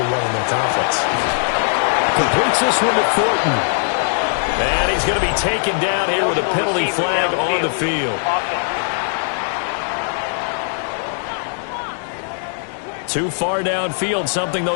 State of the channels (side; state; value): right; silent; digital silence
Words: 1 in their conference. Completes this one to Thornton. And he's going to be taken down here with a penalty flag on the field. Too far downfield, something